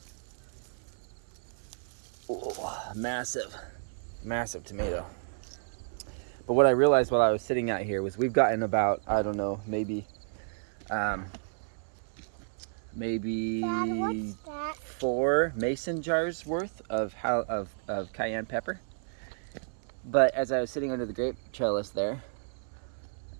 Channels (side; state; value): left; silent; 57 dB below the other